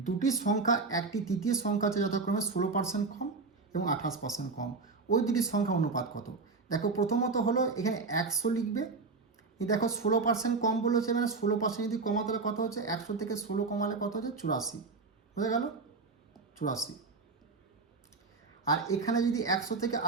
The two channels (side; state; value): left; quieter; 4.1 dB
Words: দুটি সংখ্যা একটি তৃতীয় সংখ্যা আছে যথাক্রমে 16% কম এবং 28% কম, ওই দুটি সংখ্যা অনুপাত কত? দেখো প্রথমত হলো এখানে 100 লিখবে। দেখো 16% কম বলেছে, মানে 16% যদি কমাতে হলে কত হচ্ছে, 100 থেকে 16 কমালে কত হচ্ছে, 84। বুঝা গেল, 84। আর এখানে যদি 100 থেকে